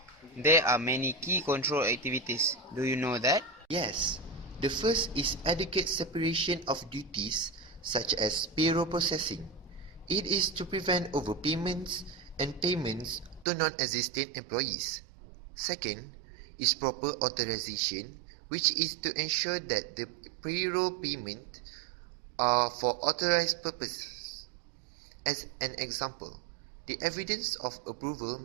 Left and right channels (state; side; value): drops out; left; at 13.5 s